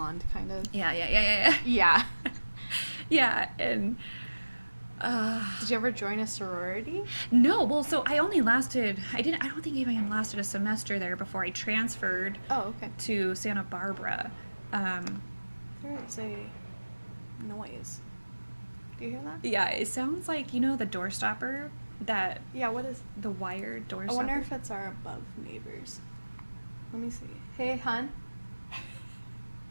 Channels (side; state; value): both; inverted; correlation -1.00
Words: kind of. Yeah. Yeah. Yeah, and Did you ever join a sorority? No, well, so I only lasted, I don't think even lasted a semester there before I transferred Oh, okay. to Santa Barbara. There is a noise. Do you hear that? Yeah, it sounds like, the door stopper, that, Yeah, what is... the wired door I stopper. wonder if it's our above neighbors. Let me see. Hey, hon.